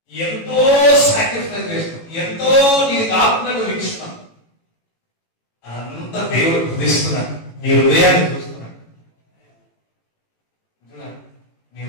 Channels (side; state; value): right; late; 18 ms